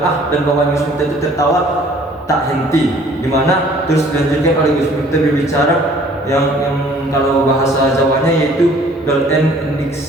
dan bawahan Gus Miftah itu tertawa tak henti, di mana terus dilanjutkan oleh Gus Miftah berbicara yang kalau bahasa Jawanya yaitu golden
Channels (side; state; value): both; normal; correlation 0.55